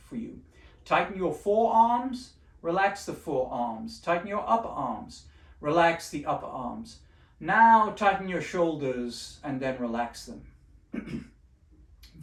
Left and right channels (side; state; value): both; identical; correlation 1.00